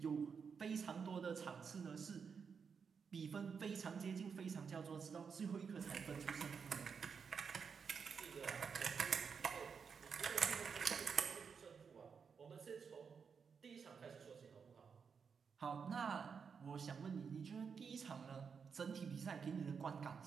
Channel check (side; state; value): left; quieter; 6.1 dB